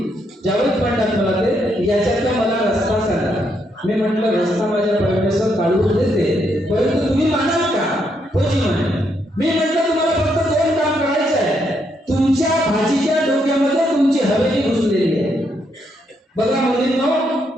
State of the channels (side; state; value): both; normal; correlation 0.77